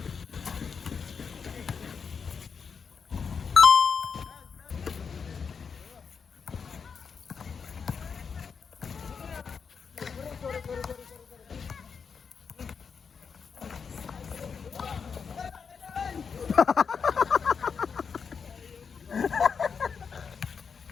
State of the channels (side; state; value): right; quieter; 6.0 dB